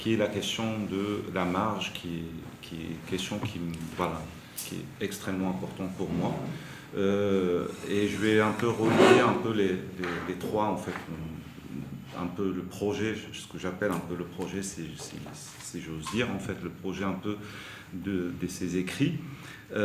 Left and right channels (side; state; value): both; identical; correlation 1.00